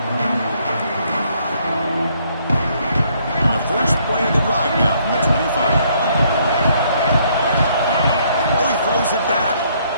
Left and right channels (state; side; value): inverted; both; correlation -0.67